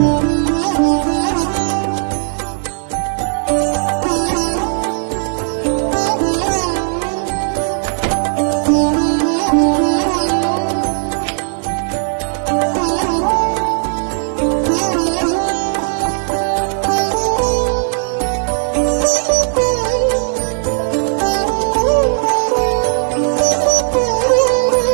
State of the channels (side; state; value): left; silent; 69 dB below the other